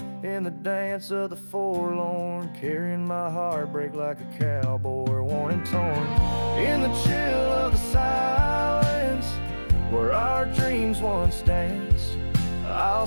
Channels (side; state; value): both; inverted; correlation -1.00